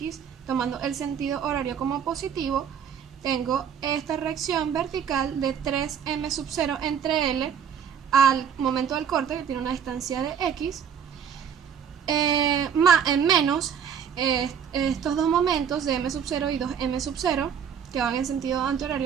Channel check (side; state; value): left; quieter; 7.9 dB